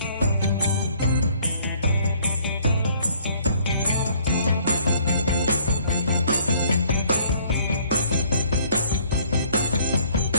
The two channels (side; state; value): both; inverted; correlation -0.60